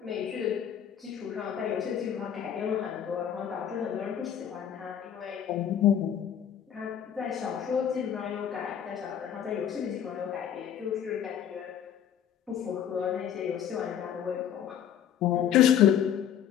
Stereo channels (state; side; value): quieter; right; 9.4 dB